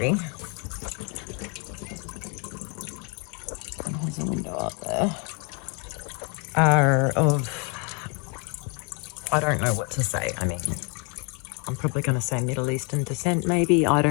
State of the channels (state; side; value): quieter; right; 35.0 dB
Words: and there's a window up there, are of, I don't know what to say. I mean, I'm probably going to say Middle Eastern descent, maybe. I